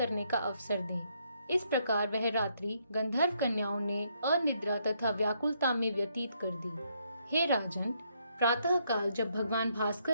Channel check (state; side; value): inverted; both; correlation -0.73